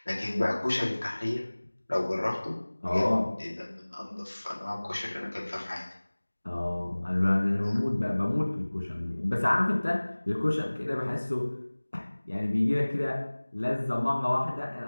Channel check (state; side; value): inverted; both; correlation -1.00